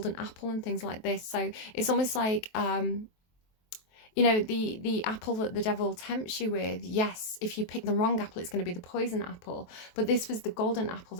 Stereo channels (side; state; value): right; late; 23 ms